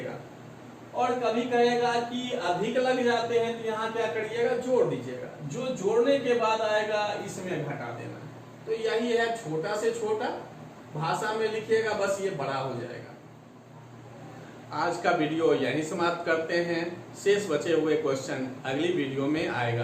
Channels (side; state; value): both; identical; correlation 1.00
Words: और कभी कहेगा कि अधिक लग जाते हैं तो यहाँ क्या करिएगा, जोड़ दीजिएगा। जो जोड़ने के बाद आएगा इसमें घटा देना। तो यही है, छोटा से छोटा भाषा में लिखिएगा, बस ये बड़ा हो जाएगा। आज का वीडियो यहीं समाप्त करते हैं। शेष बचे हुए क्वेश्चन अगली वीडियो में